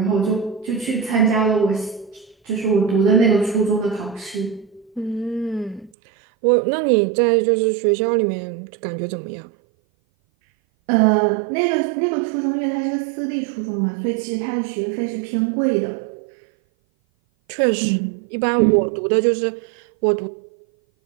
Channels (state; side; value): drops out; left; at 5.9 s